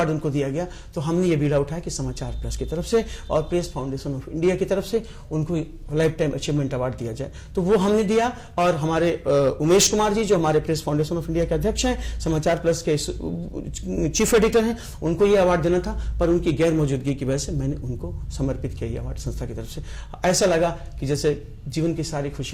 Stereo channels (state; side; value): identical; both; correlation 1.00